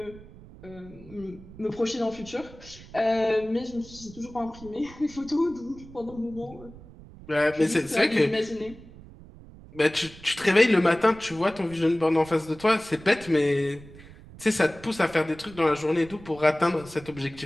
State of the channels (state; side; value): noise; right; rumble, 19 dB below the sound